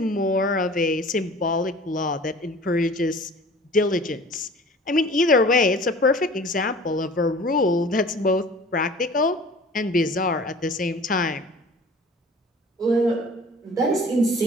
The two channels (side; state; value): both; normal; correlation 0.45